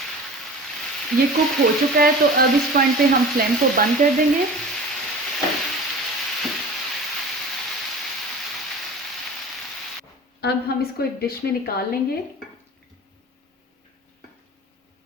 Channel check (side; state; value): both; normal; correlation 0.37